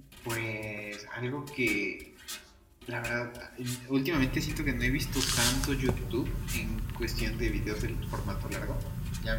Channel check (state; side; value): identical; both; correlation 1.00